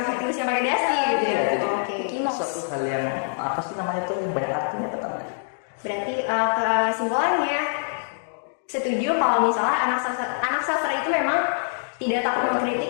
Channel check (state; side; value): silent; right; digital silence